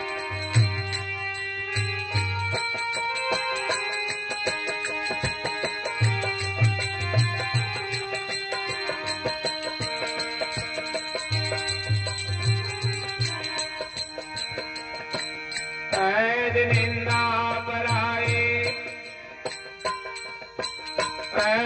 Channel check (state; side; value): identical; both; correlation 1.00